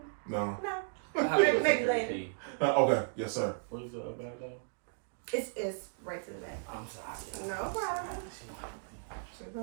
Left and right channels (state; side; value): silent; left; digital silence